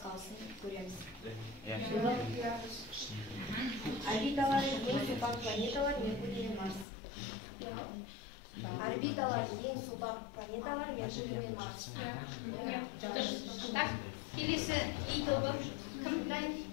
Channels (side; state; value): right; drops out; at 6.9 s